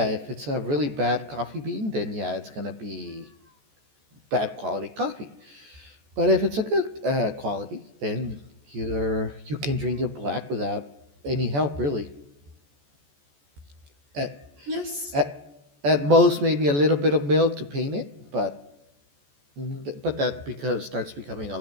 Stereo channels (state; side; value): late; left; 14 ms